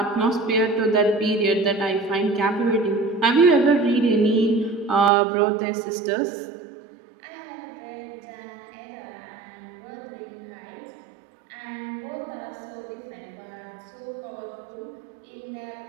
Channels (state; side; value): drops out; left; at 5.1 s